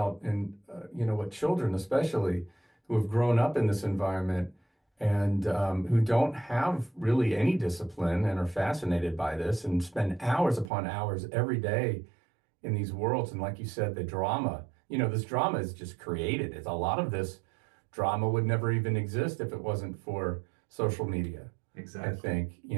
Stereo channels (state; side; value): drops out; left; at 10.7 s